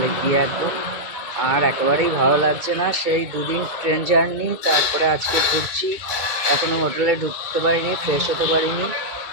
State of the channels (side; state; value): left; late; 2.3 ms